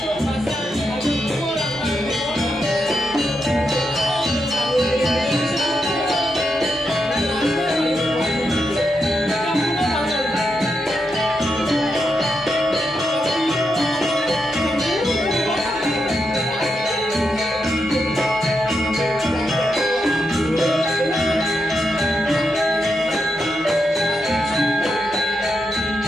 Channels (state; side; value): normal; both; correlation 0.84